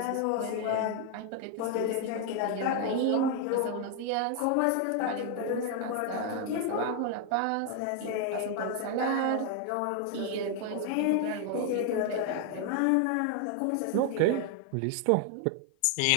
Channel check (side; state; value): both; different; correlation 0.01